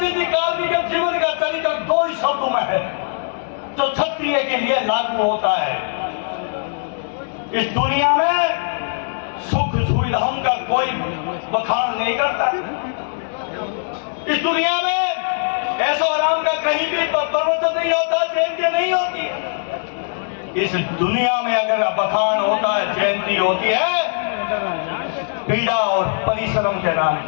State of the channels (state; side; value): silent; right; digital silence